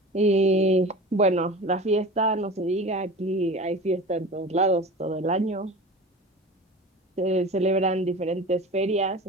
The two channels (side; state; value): both; normal; correlation 0.35